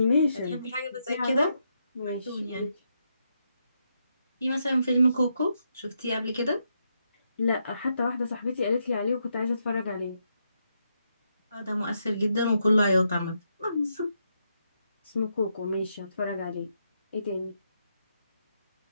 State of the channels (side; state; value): both; inverted; correlation -0.81